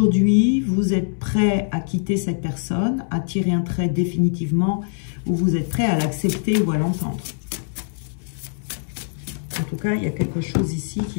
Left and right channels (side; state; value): right; silent; 64 dB below the other